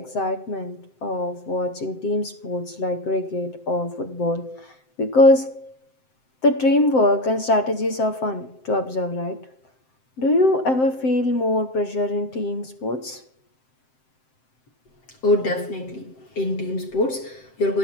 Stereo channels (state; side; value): late; right; 7.7 ms